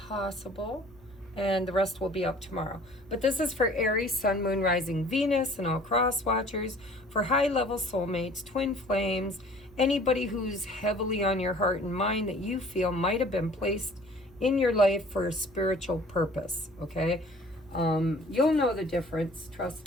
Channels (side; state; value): left; noise; hum, 27 dB below the sound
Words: and the rest will be up tomorrow. But this is for Aries, Sun, Moon, Rising, Venus, and all cross watchers, for high-level soulmates, twin flames, anybody who's heavily on your heart and mind that you feel might have been placed in your life for a spiritual purpose, okay? You'll know the difference, trust